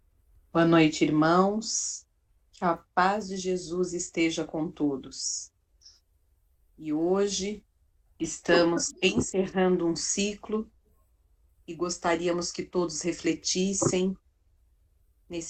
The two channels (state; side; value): identical; both; correlation 1.00